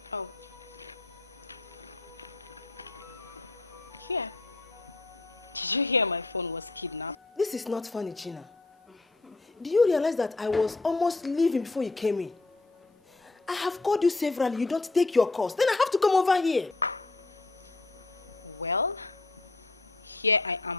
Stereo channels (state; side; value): quieter; right; 3.3 dB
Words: Oh. Here. Did you hear my phone was kidnapped? This is not funny, Gina. Do you realize that I was almost leaving before you came in? I have called you severally, you don't take your calls. Then I have to come over here. Well, here I